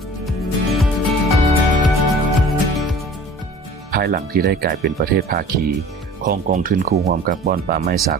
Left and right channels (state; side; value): normal; both; correlation 0.45